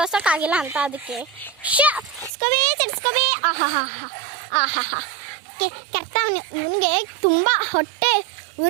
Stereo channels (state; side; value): drops out; left; at 2.3 s